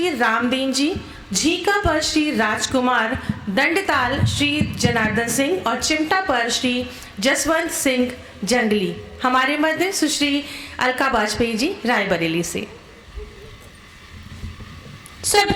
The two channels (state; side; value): identical; both; correlation 1.00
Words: रामदीन जी, झीका पर श्री राजकुमार, दंडताल श्री जनार्दन सिंह और चिमटा पर श्री जसवंत सिंह जंगली। हमारे मध्य सुश्री अलका वाजपेयी जी रायबरेली से।